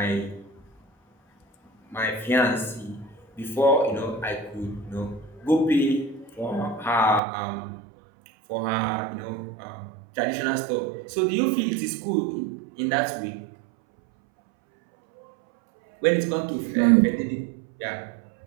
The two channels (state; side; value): drops out; left; at 7.2 s